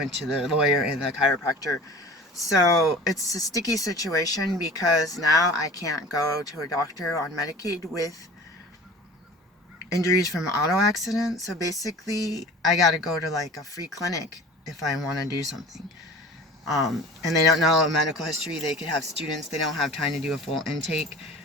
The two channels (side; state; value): both; normal; correlation 0.41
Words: to the lawyer and the chiropractor. So it's a sticky situation, because now I can't go to a doctor on Medicaid with injuries from auto accidents. So basically, I got to go to like a free clinic if I want to do something. And they don't know a medical history. They could have students. They don't have time to do a full intake.